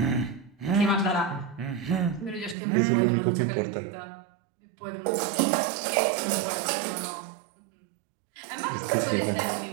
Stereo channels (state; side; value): drops out; left; at 2.6 s